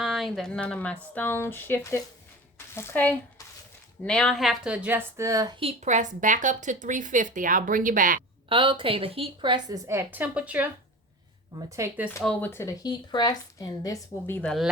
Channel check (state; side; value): normal; both; correlation 0.34